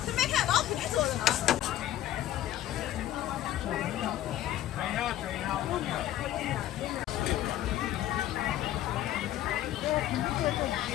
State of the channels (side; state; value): right; quieter; 12.9 dB